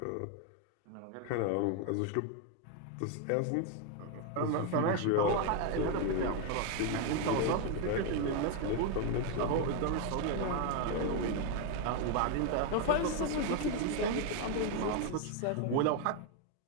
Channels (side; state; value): both; different; correlation 0.01